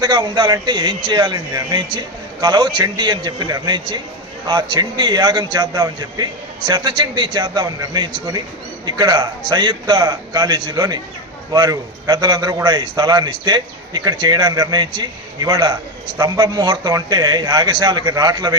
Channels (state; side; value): normal; both; correlation 0.13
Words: ఉండాలంటే ఏం చేయాలని నిర్ణయించి కలవు చండీ అని చెప్పి నిర్ణయించి ఆ చండీ యాగం చేద్దామని చెప్పి శతచండీ చేద్దామని నిర్ణయించుకొని ఇక్కడ సంయుక్త కాలేజీలోని వారు పెద్దలందరూ కూడా ఈ స్థలాన్ని ఇస్తే ఇక్కడ చేయడానికి నిర్ణయించి ఇవాళ స్తంభ ముహూర్తం అంటే యాగశాలకి రాట్ల